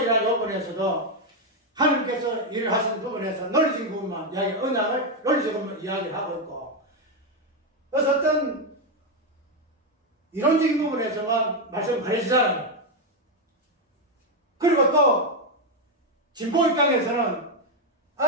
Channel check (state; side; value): normal; both; correlation 0.04